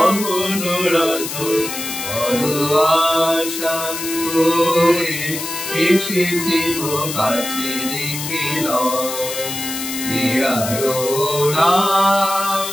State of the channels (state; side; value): noise; left; hiss, 6 dB below the sound